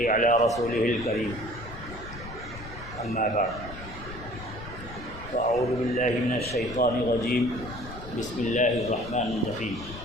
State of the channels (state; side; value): noise; left; rumble, 13 dB below the sound